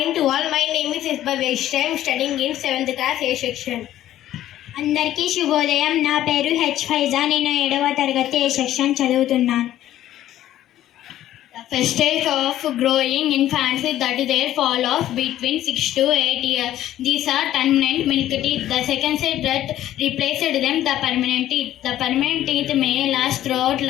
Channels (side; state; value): right; quieter; 13.0 dB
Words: to all. My name is Isba Vaishya. I am studying in 7th class A section. అందరికీ శుభోదయం. నా పేరు హెచ్ ఫైజా. నేను 7వ తరగతి ఏ సెక్షన్ చదువుతున్నాను. The first stage of growing infants is that their fall off between 6 to 8 years. These are permanent milk teeth. The second stage that replaced them the permanent teeth. The permanent teeth may last throughout